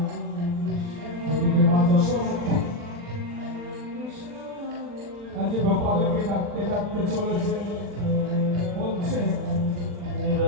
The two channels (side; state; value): left; late; 40 ms